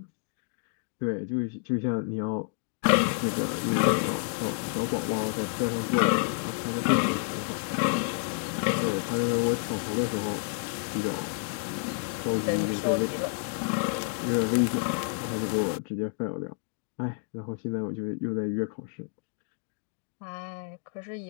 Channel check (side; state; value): right; silent; digital silence